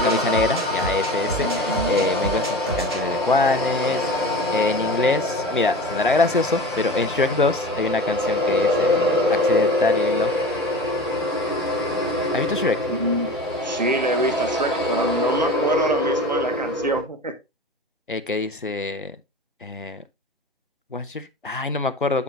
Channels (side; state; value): both; normal; correlation 0.35